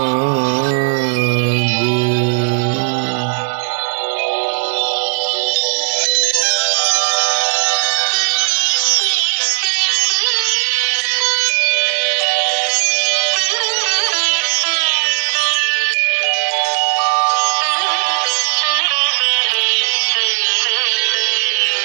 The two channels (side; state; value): left; silent; 63 dB below the other